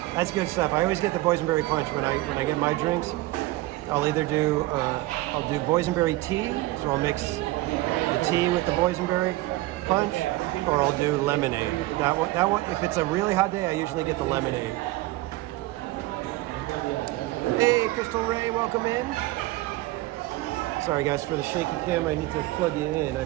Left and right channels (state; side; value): quieter; left; 18.7 dB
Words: That's good stuff. I always get the boysenberry punch when I get my drinks. I'll either do boysenberry tea, so I'll mix the tea with the boysenberry punch, or I'll do lemonade. That one, if it's a really hot day, I usually get the lemonade. Hey, Crystal Ray, welcome in. Sorry guys for the shaky camera, I need to plug you in.